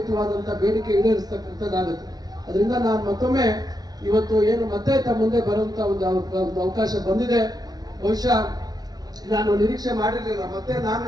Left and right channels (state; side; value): late; left; 0.19 ms